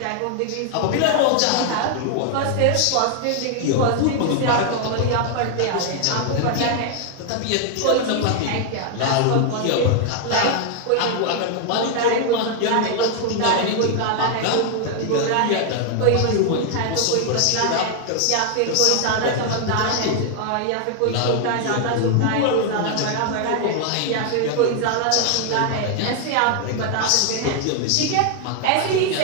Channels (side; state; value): both; different; correlation 0.00